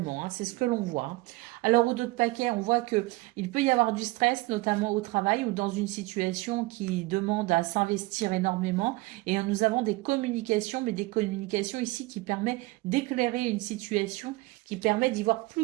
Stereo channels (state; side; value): quieter; left; 21.5 dB